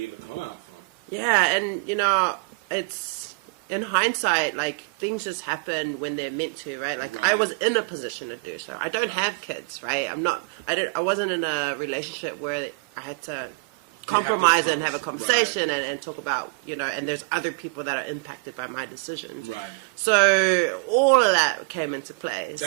able to come out from. Yeah, and you know, it's in hindsight, like things just happen when they're meant to, right? Like I was in a position to do so. I don't have kids, right? I wasn't in a relationship where I had to compromise and have a conversation and talk about, you know, and there's other people that are impacted by my decisions. Right. So all of that came into play.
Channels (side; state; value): left; quieter; 32.1 dB